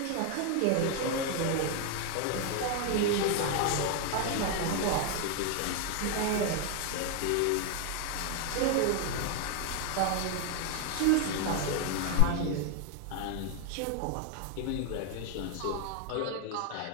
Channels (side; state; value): both; different; correlation 0.00